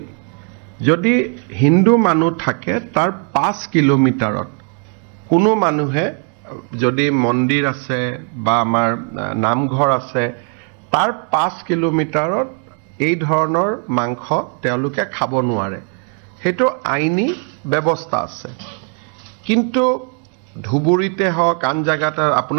যদি হিন্দু মানুহ থাকে তাৰ 5 কিলোমিটাৰত কোনো মানুহে যদি মন্দিৰ আছে বা আমাৰ নামঘৰ আছে তাৰ 5 কিলোমিটাৰত এই ধৰণৰ মাংস তেওঁলোকে খাব নোৱাৰে। সেইটো আইনী ব্যৱস্থা আছে। কিন্তু ধুবুৰীতে হওক আন জাগাত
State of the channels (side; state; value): left; quieter; 39.5 dB